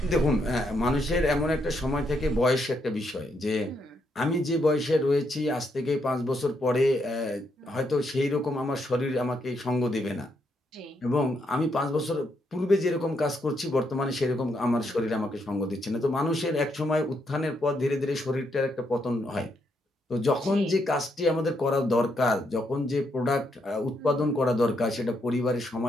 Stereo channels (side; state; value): both; normal; correlation 0.77